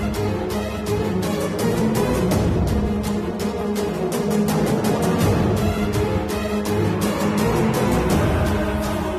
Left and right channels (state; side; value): identical; both; correlation 1.00